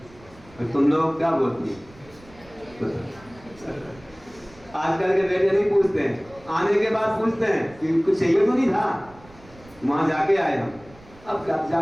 और तुम लोग क्या बोलते हैं? आजकल के बेटे नहीं पूछते हैं, आने के बाद पूछते हैं कि कुछ चाहिए तो नहीं था, वहां जाके आए हम, अब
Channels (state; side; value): noise; right; rumble, 24 dB below the sound